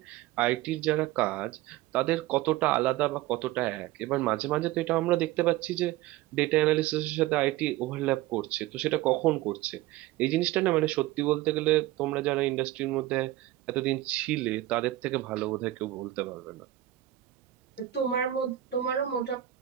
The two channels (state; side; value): quieter; left; 15.1 dB